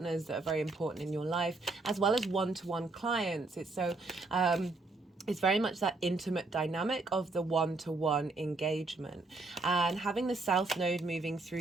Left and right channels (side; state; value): left; quieter; 3.4 dB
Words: that are very important in your life, as well as one-to-one clients. It's very much that intimate dynamic of the one-to-one engagement, and having the South Node moving